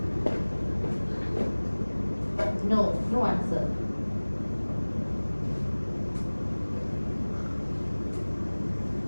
No, no answer.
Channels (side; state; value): both; inverted; correlation -1.00